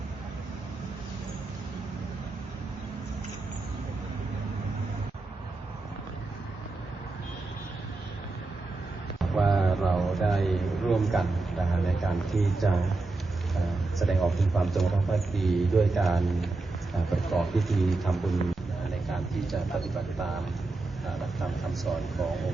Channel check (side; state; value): left; quieter; 3.4 dB